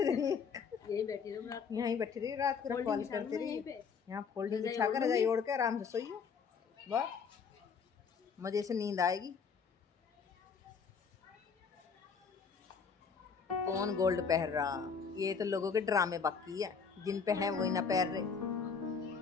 रहिए। यही बैठी रहो रात को। यहीं बैठी रही रात को, रखवाली करते यहीं रहिए। पे यहाँ फोल्डिंग रजाई बिछा कर ओढ़ रजाई लूंगी। ओढ़ के आराम से सोइए। वाह, मजे से नींद आएगी। कौन गोल्ड पहन रहा? ये तो लोगों के ड्रामे बाकी है, जिन पे है वही ना पहन रहे।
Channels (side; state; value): right; quieter; 5.9 dB